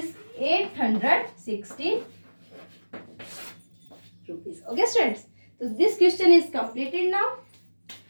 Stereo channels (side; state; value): both; inverted; correlation -1.00